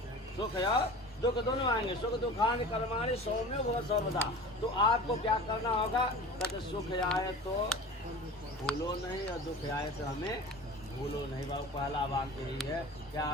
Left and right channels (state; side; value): normal; both; correlation 0.37